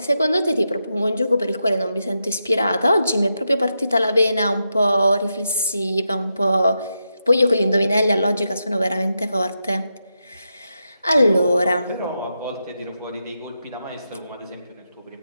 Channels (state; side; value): inverted; both; correlation -0.86